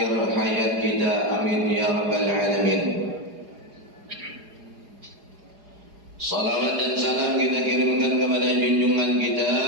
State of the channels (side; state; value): left; late; 4.8 ms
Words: hayat kita. Amin ya rabbal alamin. Salawat dan salam kita kirimkan kepada junjungan kita,